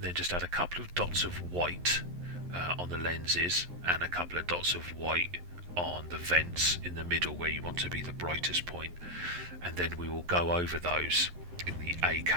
then just add a couple of dots of white on the lenses and a couple of dots of white on the vents in the middle where you want to be the brightest point, and then we will go over those in the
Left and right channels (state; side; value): late; left; 11 ms